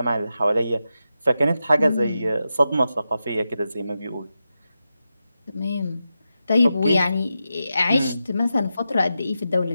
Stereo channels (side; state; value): both; inverted; correlation -0.90